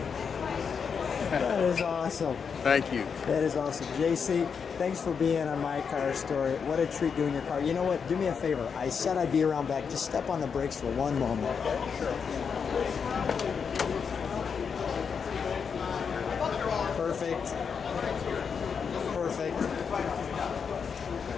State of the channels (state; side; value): quieter; right; 6.3 dB